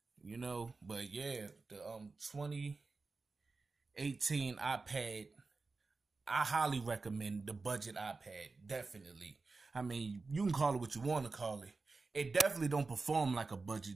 you know, but yeah, the 2018 iPad, I highly recommend the budget iPad, definitely. I mean, you can call it what you want to call it. It definitely don't perform like a budget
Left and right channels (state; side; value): quieter; left; 3.9 dB